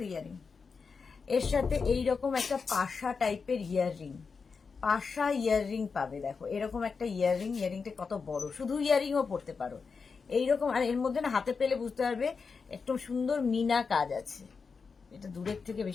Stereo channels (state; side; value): quieter; right; 5.2 dB